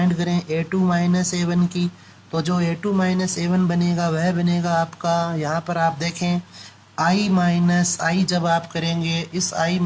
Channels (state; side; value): identical; both; correlation 1.00